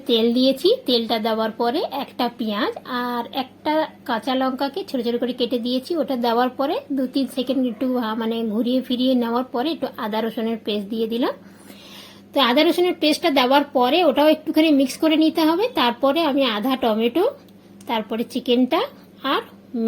তেল দিয়েছি। তেলটা দেওয়ার পরে একটা পেঁয়াজ আর একটা কাঁচা লঙ্কাকে ছোটো ছোটো করে কেটে দিয়েছি। ওটা দেওয়ার পরে 2-3 সেকেন্ড একটু মানে ঘুরিয়ে ফিরিয়ে নেওয়ার পরে একটু আদা রসুনের পেস্ট দিয়ে দিলাম। তো আদা রসুনের পেস্টটা দেওয়ার পরে ওটাও একটুখানি মিক্স করে নিতে হবে। তারপরে আমি আধা টমেটো, তারপরে চিকেনটা আর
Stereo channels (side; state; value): both; identical; correlation 1.00